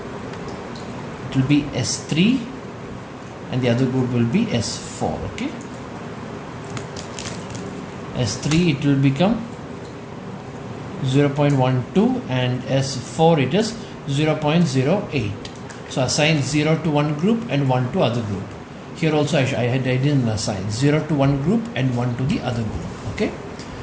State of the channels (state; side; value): identical; both; correlation 1.00